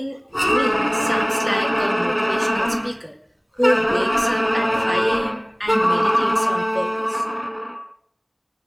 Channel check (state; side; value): identical; both; correlation 1.00